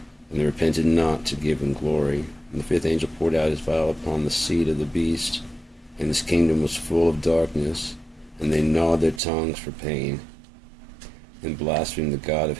and they repented not to give him glory. And the fifth angel poured out his vial upon the seat of the beast, and his kingdom was full of darkness, and they gnawed their tongues for pain, and blasphemed the God of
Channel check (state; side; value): drops out; left; at 9.2 s